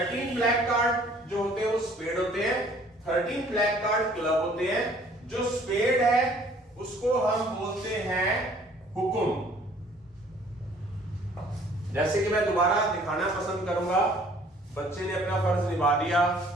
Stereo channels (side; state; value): both; normal; correlation 0.57